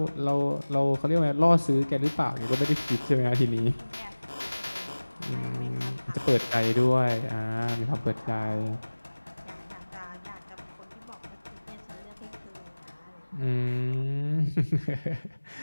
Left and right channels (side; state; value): both; inverted; correlation -1.00